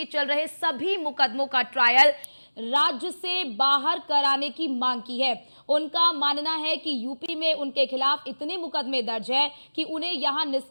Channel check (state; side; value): inverted; both; correlation -1.00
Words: चल रहे सभी मुकदमों का ट्रायल राज्य से बाहर कराने की मांग की है। उनका मानना है कि यूपी में उनके खिलाफ इतने मुकदमे दर्ज हैं कि उन्हें यहां